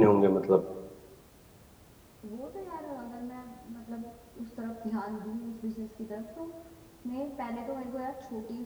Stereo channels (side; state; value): both; identical; correlation 1.00